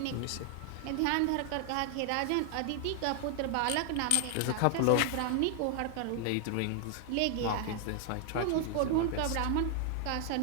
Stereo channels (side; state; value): both; different; correlation 0.00